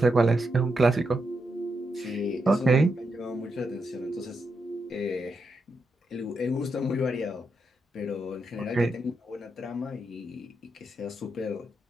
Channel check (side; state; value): both; normal; correlation 0.84